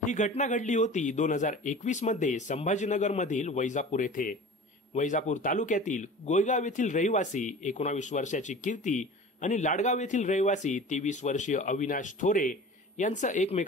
ही घटना घडली होती 2021 मध्ये संभाजीनगर मधील वैजापूर येथे। वैजापूर तालुक्यातील गोयगाव येथील रहिवासी 19 वर्षाची कीर्ती आणि लाडगाव येथील रहिवासी 23 वर्षीय अविनाश थोरे यांचं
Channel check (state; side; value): normal; both; correlation 0.39